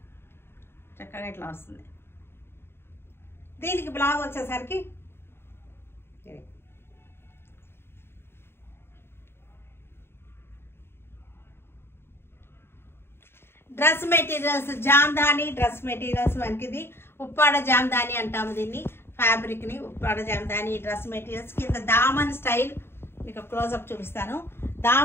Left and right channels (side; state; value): right; late; 0.11 ms